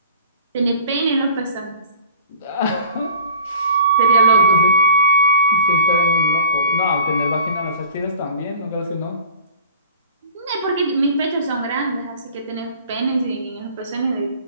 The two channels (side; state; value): both; inverted; correlation -0.45